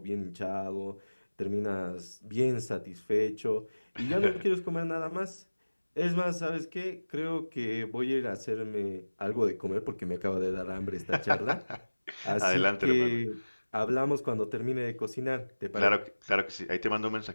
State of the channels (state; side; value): inverted; both; correlation -1.00